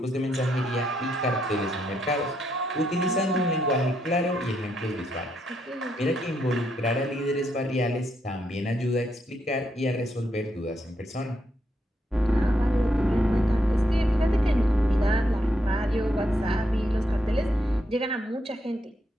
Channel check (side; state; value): both; normal; correlation 0.78